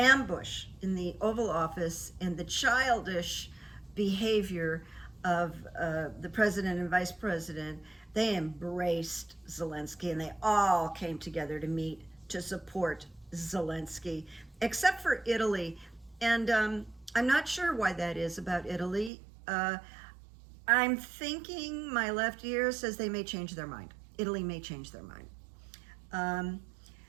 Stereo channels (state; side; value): drops out; left; at 19.1 s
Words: in the Oval Office and the childish behavior of the president and vice president, they embraced Zelenskyy, and they all came together to meet to support Zelenskyy, except for Italy. And I'm not sure why that is about Italy. I'm thinking my left ear says they may change their mind. Italy may change their mind.